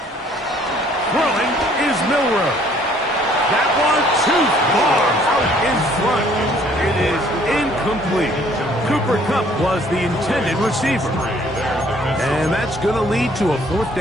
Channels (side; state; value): both; normal; correlation 0.60